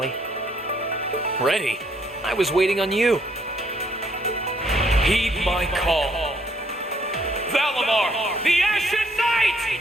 Ready? I was waiting on you. Heed my call. Valimar, the Ashen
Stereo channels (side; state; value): both; normal; correlation 0.67